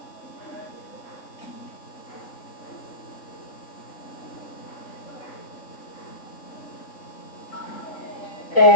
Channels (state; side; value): late; right; 3.6 ms